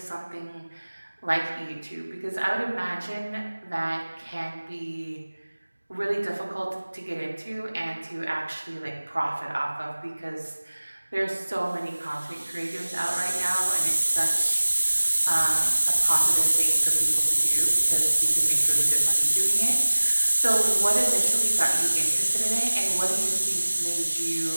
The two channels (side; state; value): both; inverted; correlation -1.00